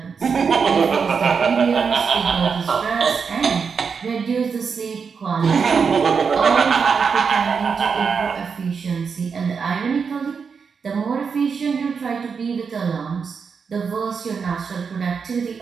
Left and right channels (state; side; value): quieter; left; 5.8 dB